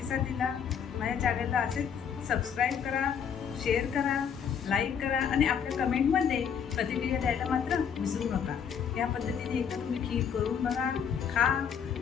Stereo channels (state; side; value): quieter; right; 7.6 dB